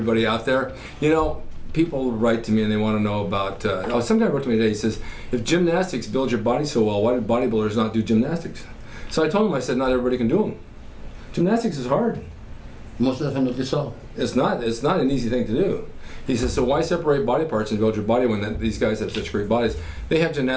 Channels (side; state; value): both; identical; correlation 1.00